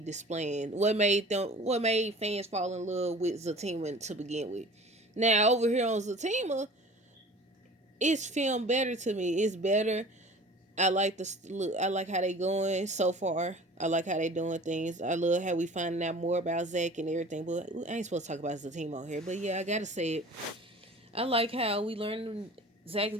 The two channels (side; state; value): both; normal; correlation 0.44